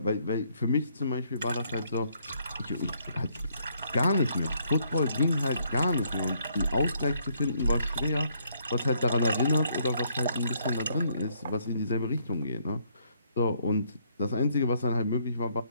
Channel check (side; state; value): both; inverted; correlation -0.70